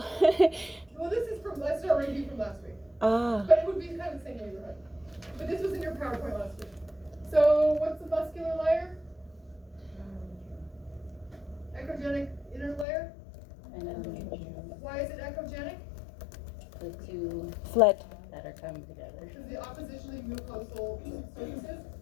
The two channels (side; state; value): right; drops out; at 12.9 s